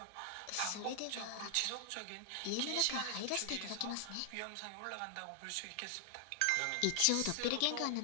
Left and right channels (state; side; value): different; both; correlation 0.00